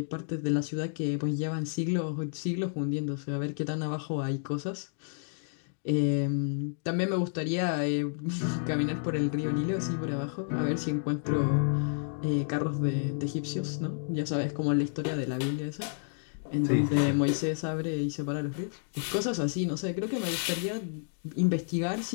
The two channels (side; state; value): right; silent; digital silence